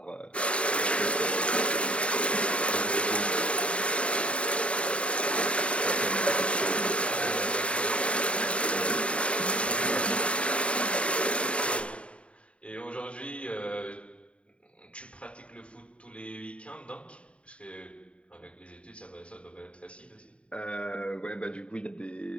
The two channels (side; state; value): right; late; 0.060 ms